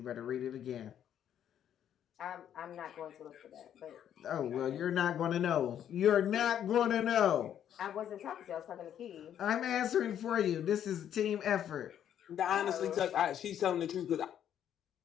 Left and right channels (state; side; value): quieter; right; 9.9 dB